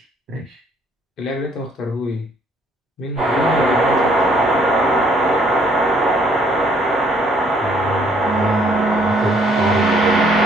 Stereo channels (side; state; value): both; normal; correlation 0.64